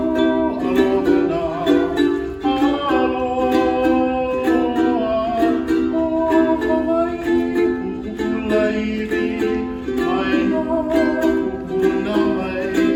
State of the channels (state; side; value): identical; both; correlation 1.00